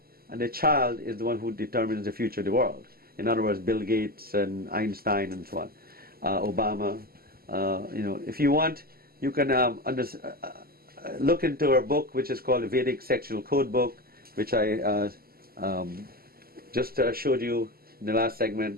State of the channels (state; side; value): late; left; 0.44 ms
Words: and the child is the one who determines the future of the world. In other words, Bill Gates and Einstein and so on, Obama. If you want, you can look into our book, which is called the Vedic Sexual Code Book, which I just showed you in the last